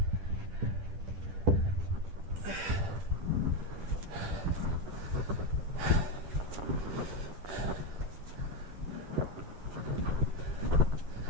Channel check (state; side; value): late; left; 10 ms